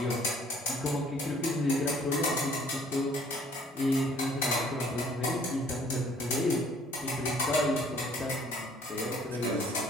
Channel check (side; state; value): both; normal; correlation 0.58